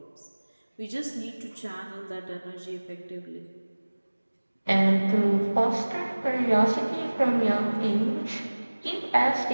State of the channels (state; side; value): inverted; both; correlation -1.00